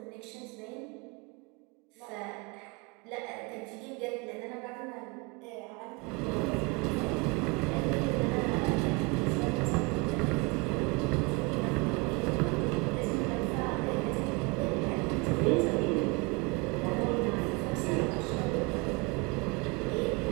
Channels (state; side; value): quieter; left; 27.4 dB